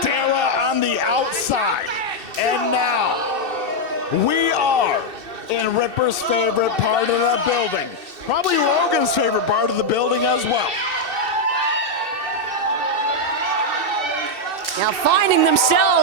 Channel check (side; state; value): left; late; 2.7 ms